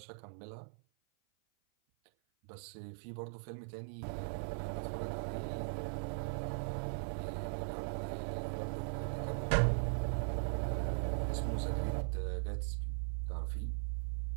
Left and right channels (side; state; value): left; silent; 51 dB below the other